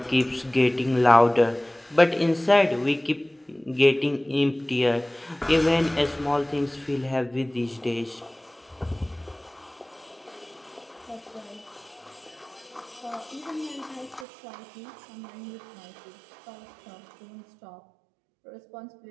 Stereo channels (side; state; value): left; drops out; at 14.2 s